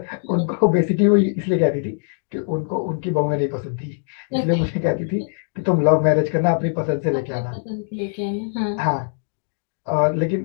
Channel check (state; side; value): silent; right; digital silence